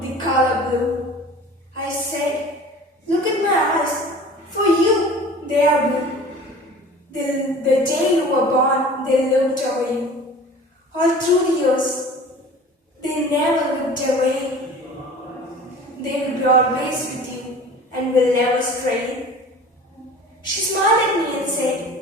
color blue. I said, "Look at my eyes. For you, they are blue. The day you were born, they looked over you. All through the years, they never looked away. They will be always with you and will never stray." She smiled at me and said,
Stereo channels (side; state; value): both; normal; correlation 0.42